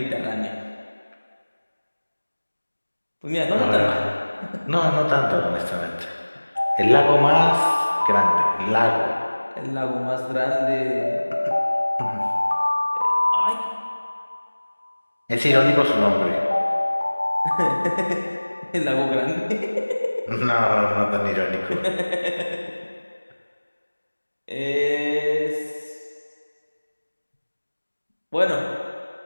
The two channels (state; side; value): inverted; both; correlation -1.00